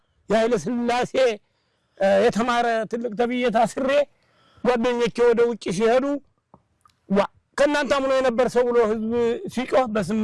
የኃይለ ሥላሴ የተማረ ትልቅ ተብዬ ታስሬ ጓደኞቼ ወደ ውጭ ሲሄዱ ከእናንተ አምኖ የነበር ሰው ብሎ ህዝብ ሲጮህ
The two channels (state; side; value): identical; both; correlation 1.00